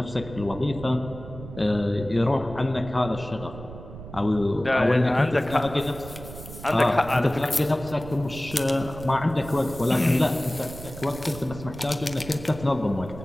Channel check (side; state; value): right; noise; rumble, 13 dB below the sound